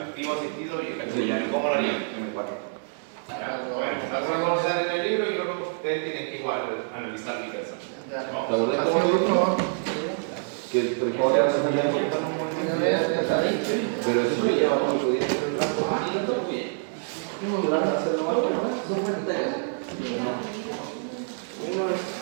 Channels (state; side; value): silent; left; 60 dB below the other